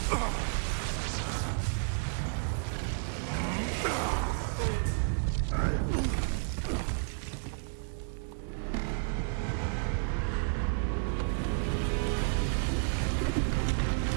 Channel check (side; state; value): left; silent; digital silence